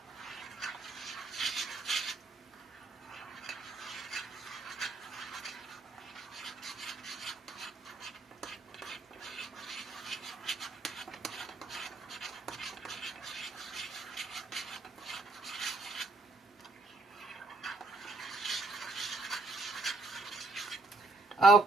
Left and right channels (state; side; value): quieter; left; 3.4 dB